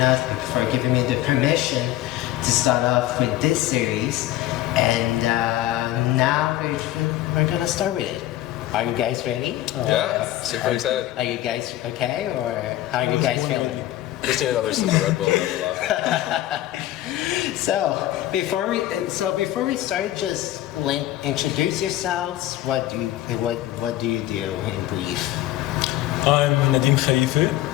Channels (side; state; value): right; quieter; 14.6 dB